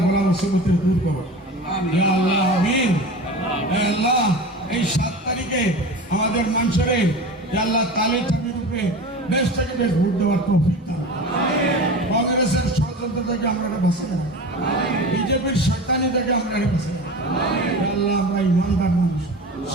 বলা মুসিবতের দূর করো। আল্লাহ আমিন। আল্লাহ এই 7 তারিখে আমাদের মানুষের আল্লাহ তালের চাবির উপরে বেশ থেকে বেশ ভোট দেওয়ার তৌফিক দাও। কংগ্রেসের ষড়যন্ত্র থেকে আমরা বাঁচাই, বিজেপির শয়তানি থেকে আমরা বাঁচাই। আল্লাহ আমরা ইমানদার মানুষ,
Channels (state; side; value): normal; both; correlation 0.33